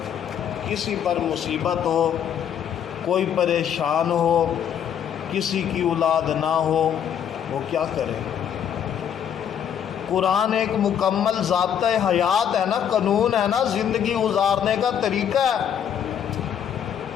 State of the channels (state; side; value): quieter; right; 8.9 dB